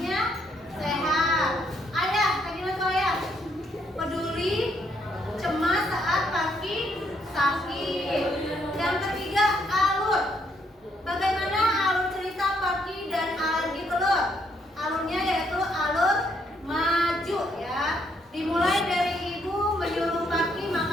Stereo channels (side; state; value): both; normal; correlation 0.72